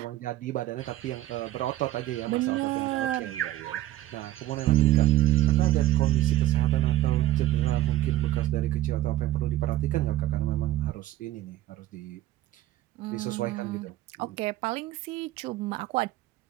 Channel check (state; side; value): quieter; left; 15.2 dB